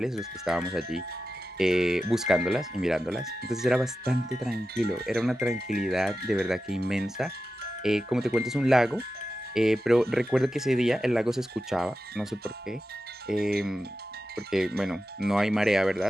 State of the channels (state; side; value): normal; both; correlation 0.92